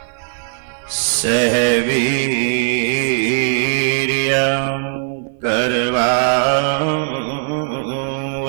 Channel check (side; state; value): left; silent; 55 dB below the other